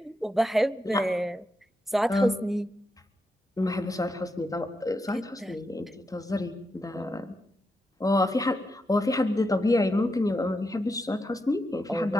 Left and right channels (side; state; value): both; normal; correlation 0.84